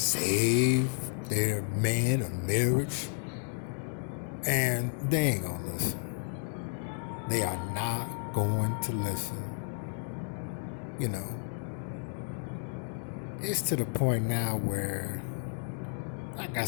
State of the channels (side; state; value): right; silent; 56 dB below the other